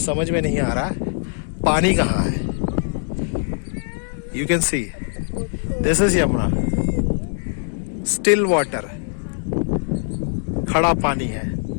समझ में नहीं आ रहा पानी कहाँ है। You can see this is Yamuna, still water, खड़ा पानी है।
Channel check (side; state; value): right; silent; 64 dB below the other